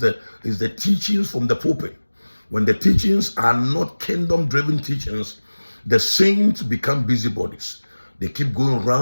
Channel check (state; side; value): inverted; both; correlation -1.00